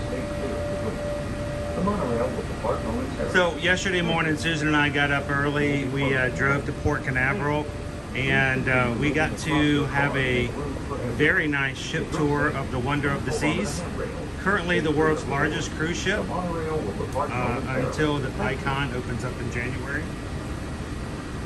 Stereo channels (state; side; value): identical; both; correlation 1.00